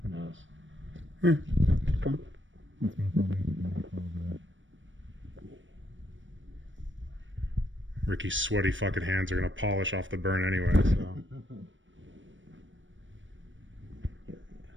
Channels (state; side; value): late; left; 0.56 ms